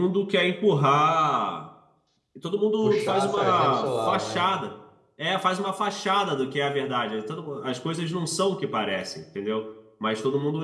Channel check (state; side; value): identical; both; correlation 1.00